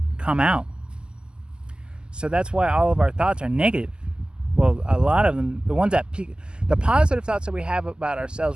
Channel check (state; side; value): late; left; 0.047 ms